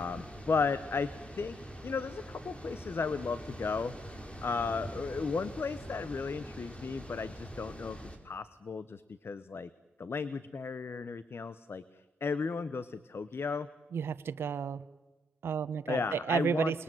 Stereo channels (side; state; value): both; normal; correlation 0.75